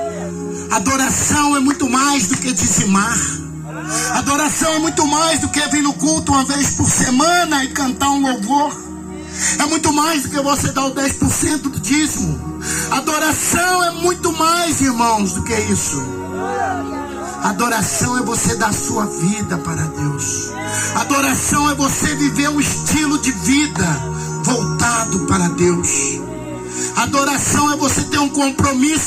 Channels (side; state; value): both; identical; correlation 1.00